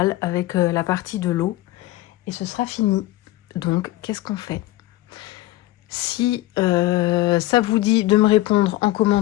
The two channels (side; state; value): right; quieter; 16.9 dB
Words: avec la partie de l'eau et ce sera fini. Donc, qu'est-ce qu'on fait? Si ça vous dit de me répondre en